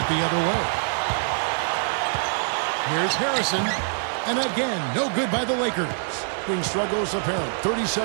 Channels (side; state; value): left; silent; digital silence